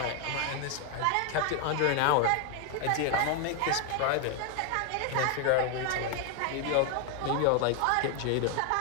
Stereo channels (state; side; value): different; both; correlation 0.01